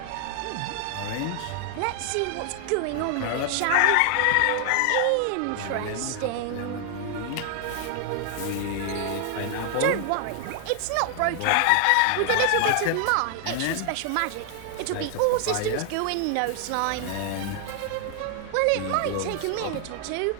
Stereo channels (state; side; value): different; both; correlation 0.00